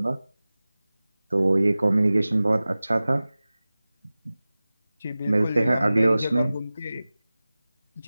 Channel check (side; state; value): both; inverted; correlation -0.97